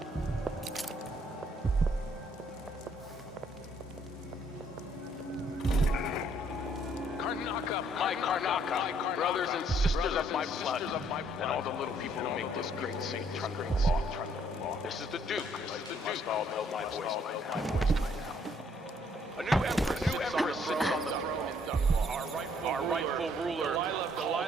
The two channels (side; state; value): both; normal; correlation 0.66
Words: Karnaca, my Karnaca, brothers and sisters of my blood, and all the little people who make this great St. Trundle law. This is the Duke. You must all know my voice by now. A new empress sits on the throne in Dunwall. Our rightful ruler,